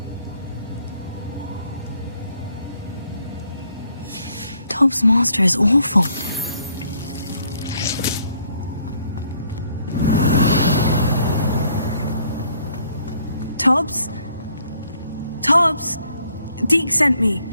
Tob's master is awful. Tobbs? Tobbs? Deke sent me.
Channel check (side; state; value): both; inverted; correlation -0.66